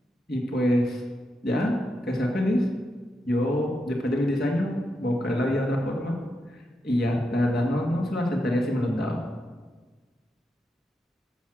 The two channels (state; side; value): normal; both; correlation 0.85